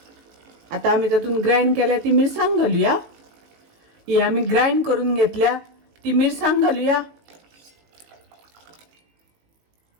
आता आमी तातून ग्राइंड केल्या ती मिरसांग घालुया। ही आमी ग्राइंड करून घेतल्या ती मिरसांग घालुया।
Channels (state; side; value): late; left; 18 ms